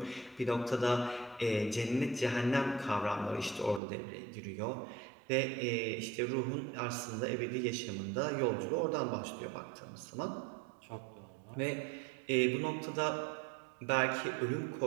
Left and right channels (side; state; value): left; drops out; at 3.8 s